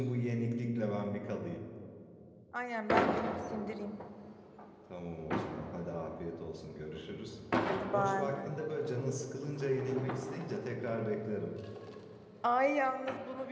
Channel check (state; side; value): identical; both; correlation 1.00